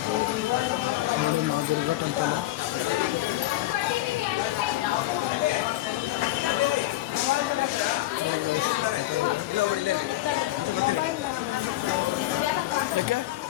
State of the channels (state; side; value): quieter; right; 16.3 dB